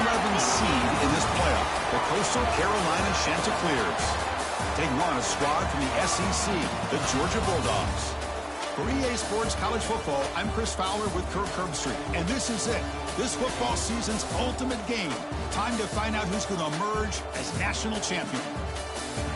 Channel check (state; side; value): identical; both; correlation 1.00